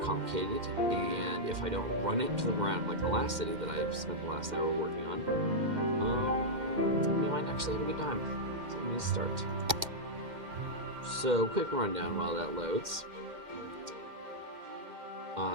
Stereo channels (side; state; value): left; late; 2.1 ms